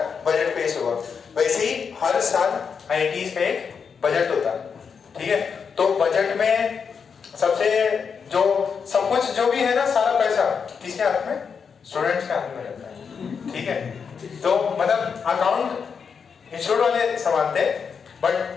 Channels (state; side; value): quieter; right; 6.2 dB